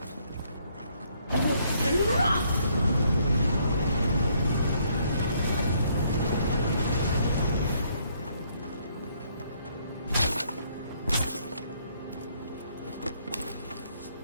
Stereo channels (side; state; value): both; inverted; correlation -0.69